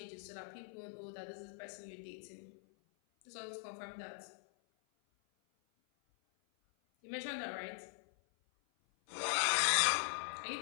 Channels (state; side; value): silent; right; 50 dB below the other